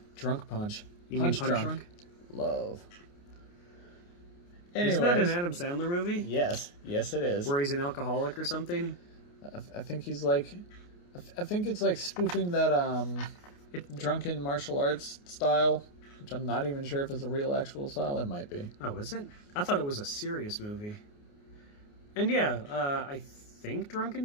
Drunk Punch. You mean Punch Drunk? Love. Anyways, isn't that an Adam Sandler movie? Yes. Yes, it is. Where he's an alcoholic or something? I think he's like... I think it's like spoofing that drunken martial arts style, which I'm not even sure if it's a real actual style. It might be. Oh, is it? I thought it was a serious movie. And yeah, I think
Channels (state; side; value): late; right; 29 ms